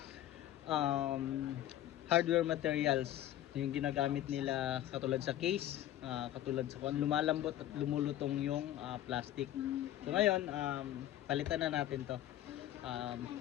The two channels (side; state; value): right; quieter; 13.0 dB